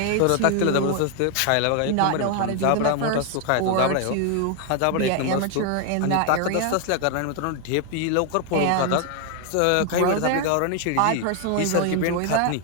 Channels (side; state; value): both; different; correlation 0.00